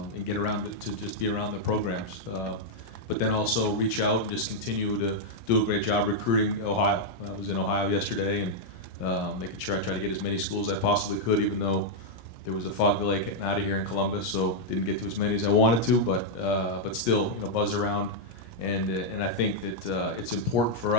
get around to just be around the programs. But then also reach out and just continue to do a great job recruiting Ohio. I was in Ohio yesterday and making sure I tried to get as many schools as I possibly could, even though there was a fog delay getting out of here in Columbus, so didn't get to as many as I wanted to, but still, buzz around. And I think that it's important for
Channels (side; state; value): right; late; 17 ms